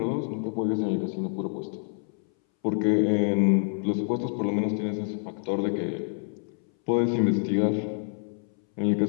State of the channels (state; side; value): silent; right; 60 dB below the other